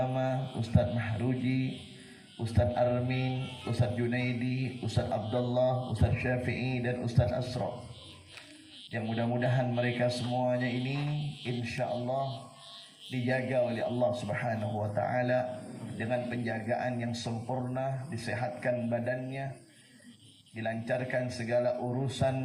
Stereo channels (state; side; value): identical; both; correlation 1.00